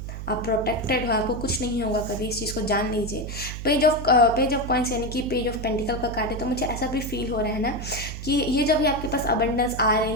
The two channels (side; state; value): right; noise; hum, 8 dB below the sound